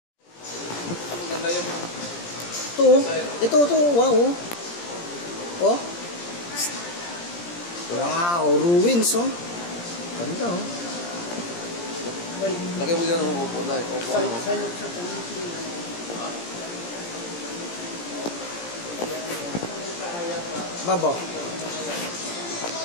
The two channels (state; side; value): late; right; 17 ms